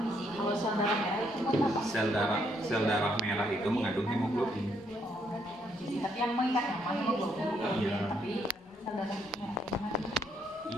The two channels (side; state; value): both; normal; correlation 0.72